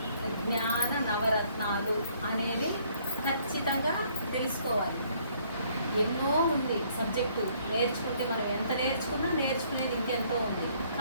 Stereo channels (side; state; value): both; inverted; correlation -0.64